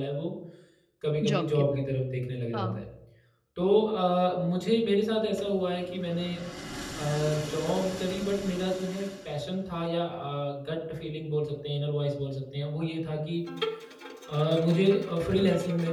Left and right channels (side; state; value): both; identical; correlation 1.00